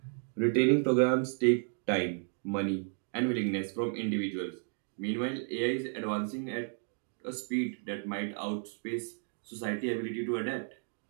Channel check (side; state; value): left; silent; 56 dB below the other